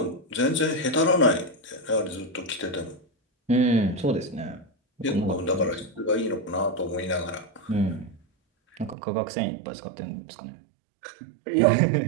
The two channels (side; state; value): left; drops out; at 9.0 s